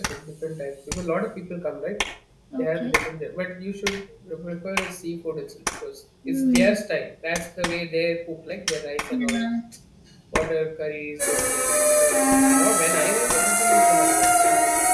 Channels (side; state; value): both; identical; correlation 1.00